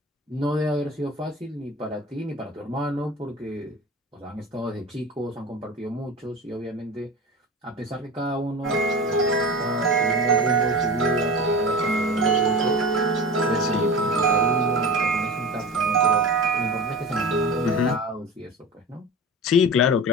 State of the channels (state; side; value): normal; both; correlation 0.31